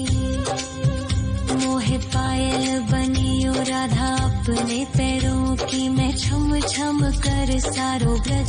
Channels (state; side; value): identical; both; correlation 1.00